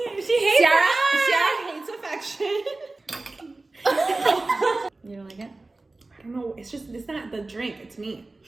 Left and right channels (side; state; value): left; quieter; 3.2 dB